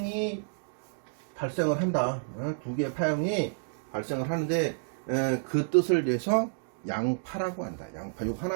발생을 한다. 두 개의 파형이 발생을 하는데 그 뜻을 내서 양파라고 한다. 양파. 요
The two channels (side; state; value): left; silent; digital silence